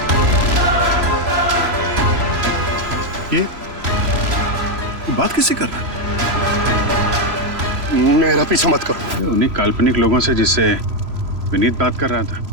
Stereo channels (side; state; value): left; late; 3.0 ms